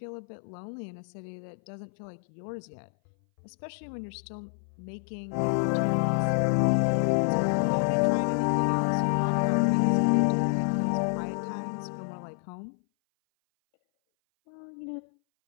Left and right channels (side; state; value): right; silent; 59 dB below the other